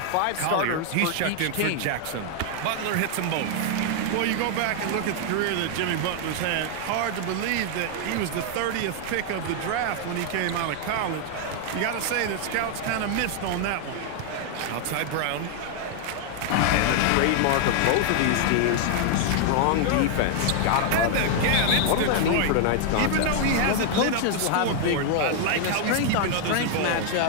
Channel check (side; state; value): both; different; correlation 0.00